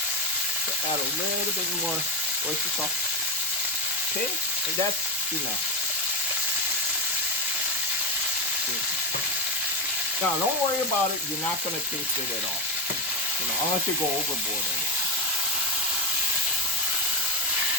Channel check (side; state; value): both; normal; correlation 0.12